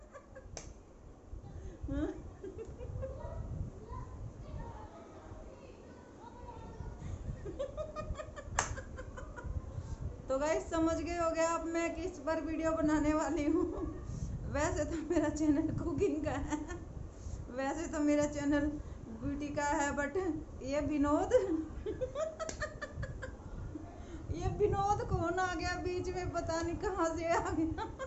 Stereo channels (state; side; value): identical; both; correlation 1.00